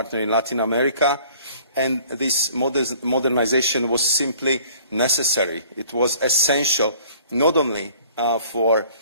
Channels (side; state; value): both; inverted; correlation -0.54